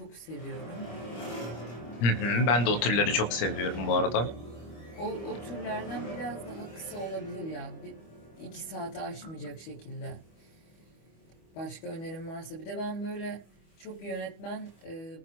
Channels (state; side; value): late; right; 25 ms